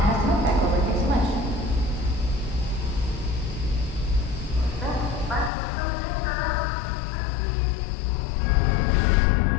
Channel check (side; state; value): right; drops out; at 5.5 s